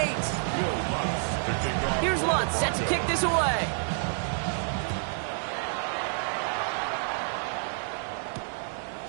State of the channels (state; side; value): silent; left; 59 dB below the other